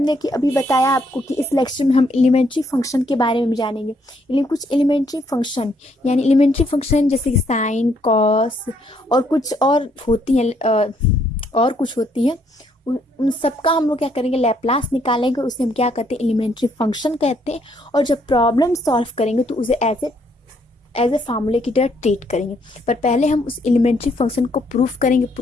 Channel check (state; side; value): normal; both; correlation 0.71